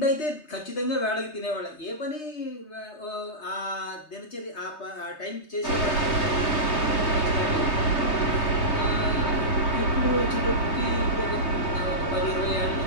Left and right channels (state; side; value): late; right; 3.2 ms